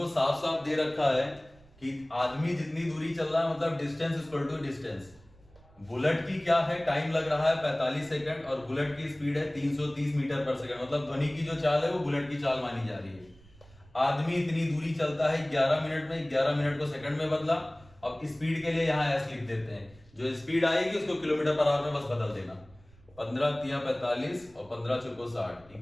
साफ साफ दे रखा है कि आदमी जितनी दूरी चल रहा है मतलब distance equal to distance. Bullet की क्या है, टाइम लग रहा है 45 सेकंड और बुलेट की स्पीड है 330 मीटर पर सेकंड, मतलब ध्वनि की जो चाल है वो बुलेट की चाल मानी जा रही है। आदमी इतनी दूरी चलता है 11 मिनट में, 11 मिनट को सेकंड में बदला। अब स्पीड के लिए यहाँ एस लिख देते हैं, जो स्पीड आएगी उसको किलोमीटर पर आवर में बस बदल देना। 15 तिया 45 और 15 चौको 60,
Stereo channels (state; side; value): noise; right; rumble, 26 dB below the sound